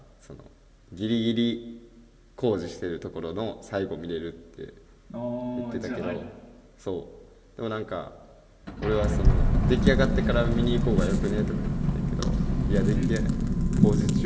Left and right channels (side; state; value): both; identical; correlation 1.00